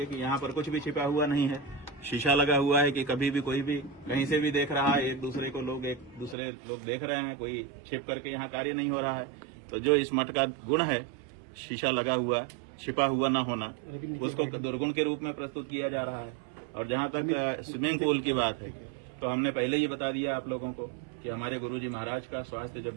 कि यहाँ पर कुछ भी छिपा हुआ नहीं है, शीशा लगा हुआ है कि कभी भी कोई भी कहीं से भी देख रहा है, एक दूसरे लोग देख रहे हैं, कोई छिप करके यहाँ कार्य नहीं हो रहा है। तो जो इस मठ का गुण है, शीशा लगा हुआ छिपा हुआ ना होना, उसको दुर्गुण के रूप में प्रस्तुत किया जा रहा है। और जहाँ तक स्विमिंग पूल की बात है, तो हमने पहले ही बता दिया आप लोगों को कि हमारे गुरुजी महाराज का स्वास्थ्य जब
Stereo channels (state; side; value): drops out; left; at 6.4 s